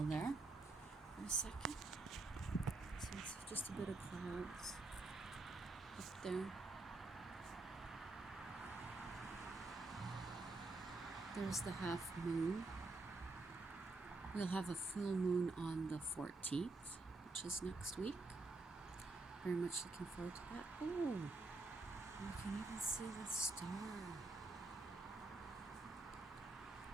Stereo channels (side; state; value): left; quieter; 3.3 dB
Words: there for a second. So it's just a bit of clouds up there. There's the half moon. We'll have a full moon on the 14th, which is next week. Very much looking forward to that. Oh, you can even see the star.